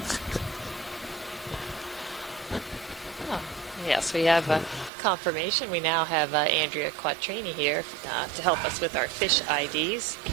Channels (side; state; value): left; drops out; at 4.9 s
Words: Oh, yes, we have confirmation. We now have Andrea Quattrini here to help us with our fish IDs.